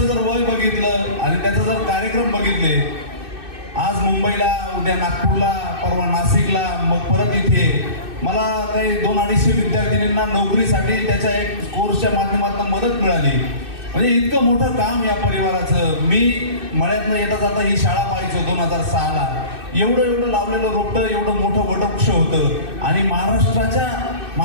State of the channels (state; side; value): late; left; 2.6 ms